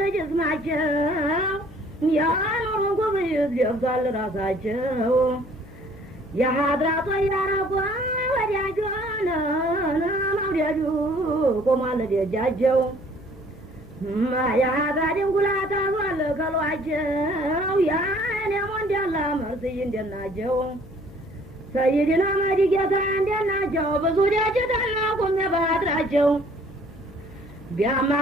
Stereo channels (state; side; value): noise; left; hum, 21 dB below the sound